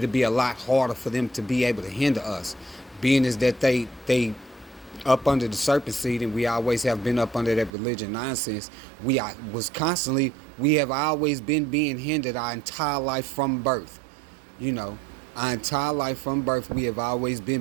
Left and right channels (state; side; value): drops out; left; at 7.7 s